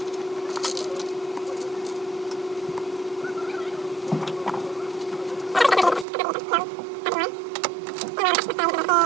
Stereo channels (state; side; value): drops out; left; at 6.1 s